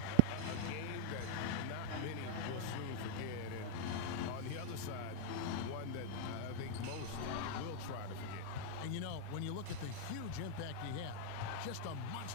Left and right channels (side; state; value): both; different; correlation 0.00